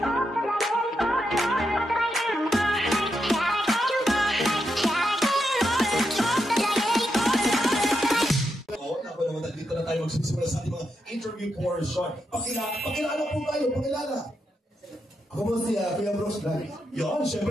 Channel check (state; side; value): normal; both; correlation 0.83